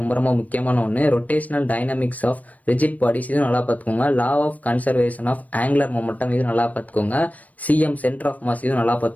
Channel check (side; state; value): right; late; 0.072 ms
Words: முக்கியமான ஒன்று. Rotational dynamics of rigid bodies இது நல்லா பார்த்துக்கோங்க. Law of conservation of angular momentum இது நல்லா பார்த்துக்கோங்க. சிஎம் சென்டர் ஆஃப் மாஸ் இது நல்லா